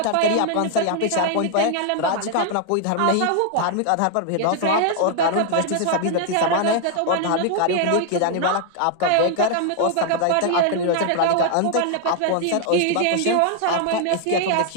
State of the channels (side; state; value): both; different; correlation 0.00